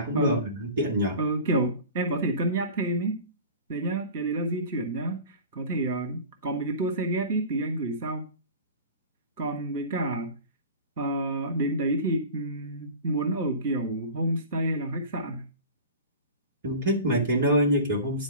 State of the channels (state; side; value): inverted; both; correlation -0.37